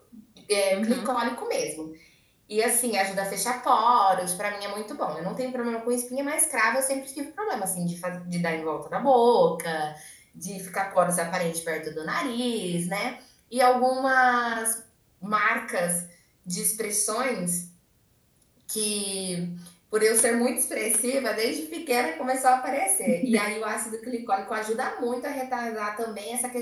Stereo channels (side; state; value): both; identical; correlation 1.00